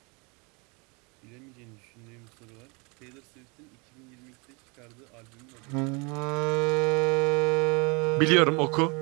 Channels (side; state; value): left; quieter; 30.3 dB